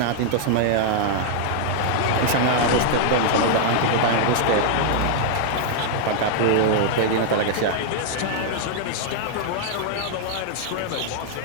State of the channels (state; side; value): different; both; correlation 0.00